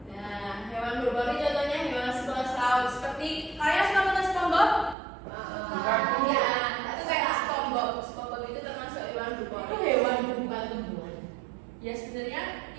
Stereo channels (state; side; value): drops out; left; at 5.0 s